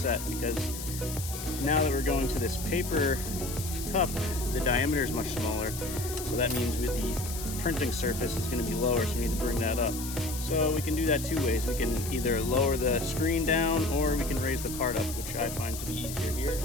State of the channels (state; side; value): noise; left; hiss, 9 dB below the sound